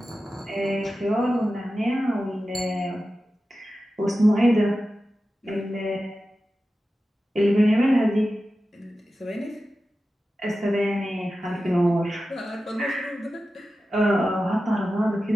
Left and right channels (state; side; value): normal; both; correlation 0.93